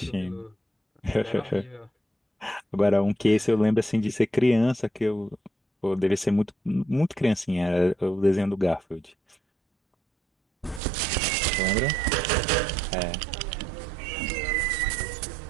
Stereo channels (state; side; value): drops out; left; at 10.8 s